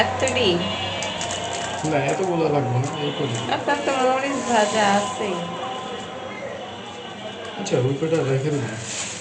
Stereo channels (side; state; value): both; identical; correlation 1.00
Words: না, এতগুলো লাগবে না, এই করে। আপনার তো মরিচ ভাজা আছে। আচ্ছা, ওই কটা রেখে দেবো।